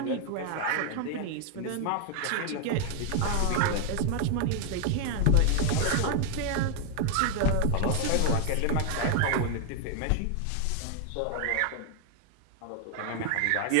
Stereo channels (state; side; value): different; both; correlation 0.00